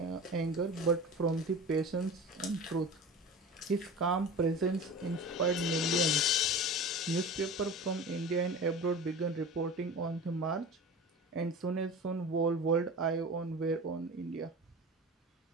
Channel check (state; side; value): normal; both; correlation 0.34